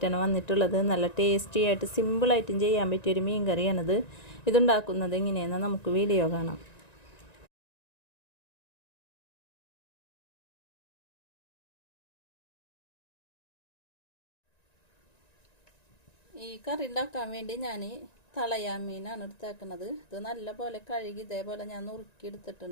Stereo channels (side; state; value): right; late; 1.9 ms